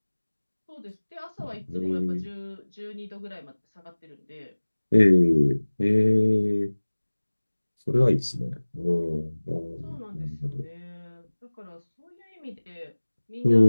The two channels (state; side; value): inverted; both; correlation -1.00